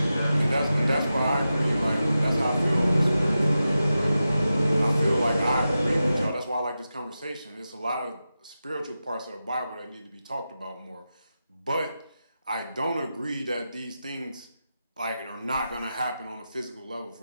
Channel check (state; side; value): inverted; both; correlation -0.91